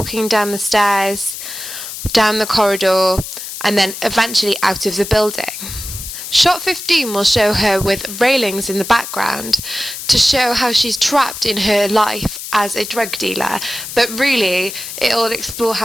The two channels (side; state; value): left; noise; hiss, 9 dB below the sound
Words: down the stairs, down the corridor, and then eventually out of the building. Shot 15 will show her with railings in the background to show how she's trapped in her life as a drug dealer, but really it will explore